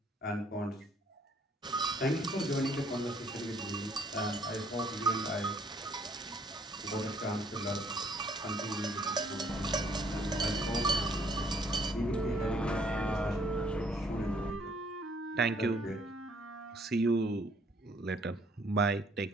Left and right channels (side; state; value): both; normal; correlation 0.63